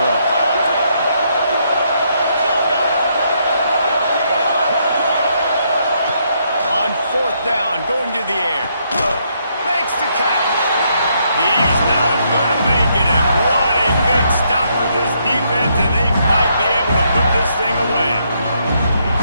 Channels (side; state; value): both; inverted; correlation -0.74